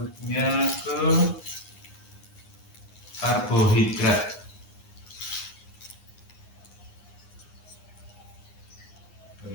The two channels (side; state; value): right; late; 9.7 ms